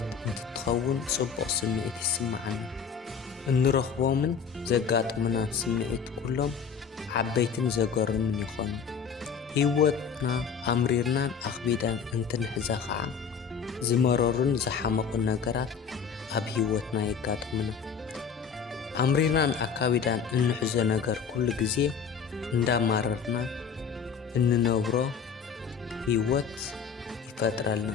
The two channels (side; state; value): right; quieter; 6.5 dB